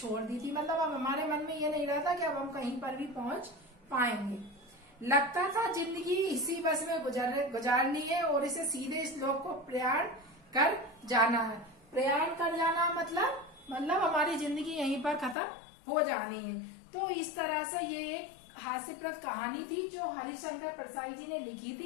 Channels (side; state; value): right; drops out; at 15.4 s